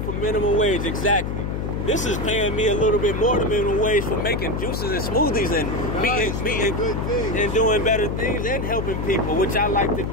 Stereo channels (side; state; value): left; noise; hum, 3 dB below the sound